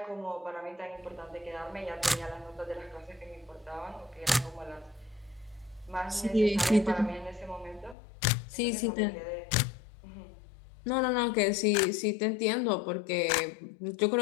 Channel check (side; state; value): right; drops out; at 8.0 s